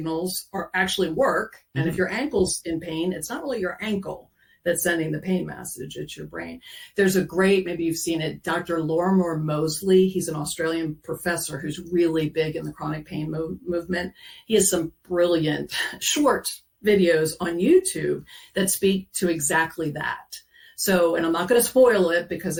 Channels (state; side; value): identical; both; correlation 1.00